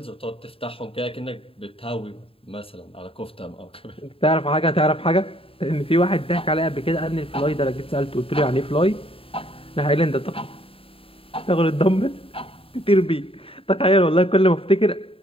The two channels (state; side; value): late; right; 0.27 ms